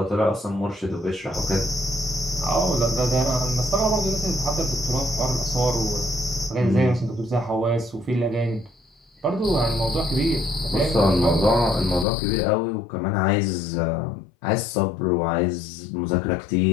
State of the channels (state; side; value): drops out; right; at 12.1 s